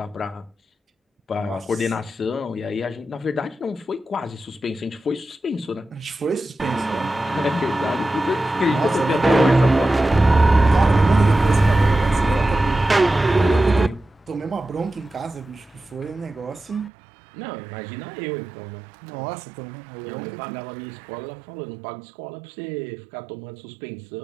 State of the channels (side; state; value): left; drops out; at 16.9 s